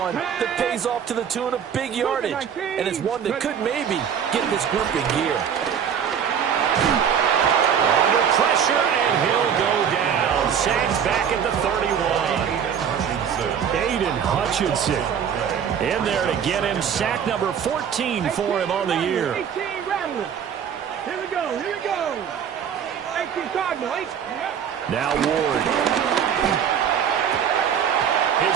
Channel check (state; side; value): quieter; left; 8.0 dB